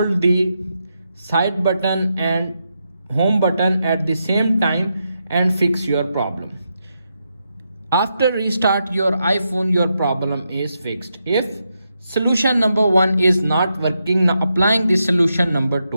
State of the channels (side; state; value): both; inverted; correlation -0.84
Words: the side button and home button at the same time and fix your problem. After restart your iPhone, your problem is fixed. If solution number 1 is not working, now applying the solution number